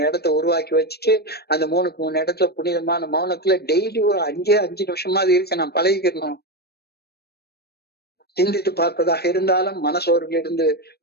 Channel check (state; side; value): late; right; 0.47 ms